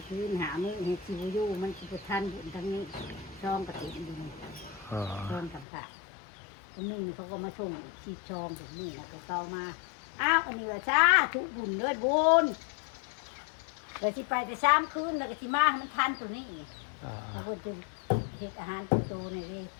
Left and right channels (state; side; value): drops out; right; at 5.7 s